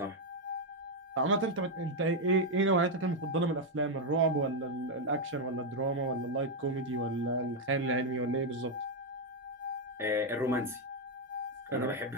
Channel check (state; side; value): normal; both; correlation 0.02